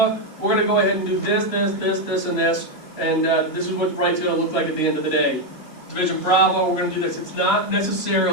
we're going to go ahead and do this, this, this, this, and this, and this is what Bright's going to look like at the end of the day. Division Bravo, we're going to do this. It's not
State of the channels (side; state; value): right; late; 2.9 ms